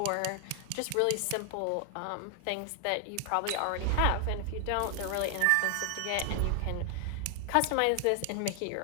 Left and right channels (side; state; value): both; different; correlation 0.00